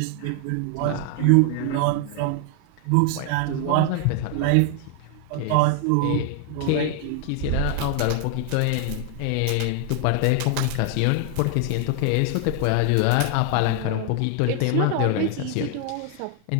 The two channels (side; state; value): both; different; correlation 0.00